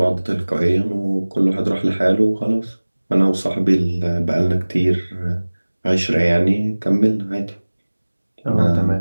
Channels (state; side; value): inverted; both; correlation -1.00